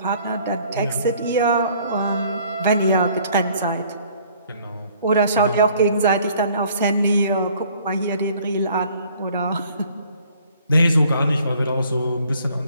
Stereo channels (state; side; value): inverted; both; correlation -0.58